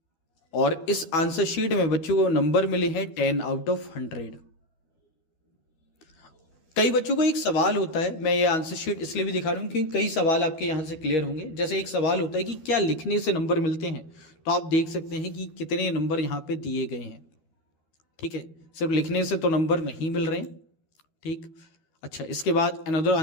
और इस आंसर शीट में बच्चों को नंबर मिले हैं 10 आउट ऑफ 100। कई बच्चों को एक सवाल होता है, मैं ये आंसर शीट इसलिए भी दिखा रहा हूं क्योंकि कई सवाल आपके यहां से क्लियर होंगे। जैसे एक सवाल होता है कि क्या लिखने से नंबर मिलते हैं, तो आप देख सकते हैं कि कितने नंबर यहां पे दिए गए हैं। ठीक है, सिर्फ लिखने से तो नंबर नहीं मिल रहे हैं। ठीक, अच्छा, इसके बाद अनदर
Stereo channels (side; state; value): right; late; 12 ms